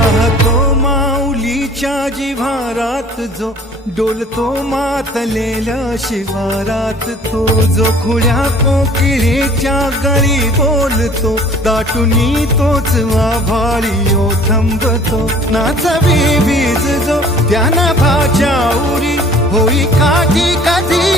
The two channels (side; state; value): both; normal; correlation 0.51